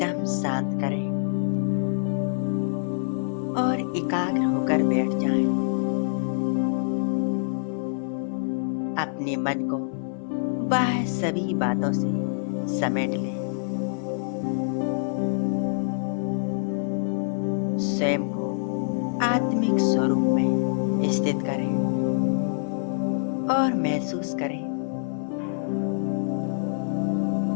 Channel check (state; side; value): silent; right; digital silence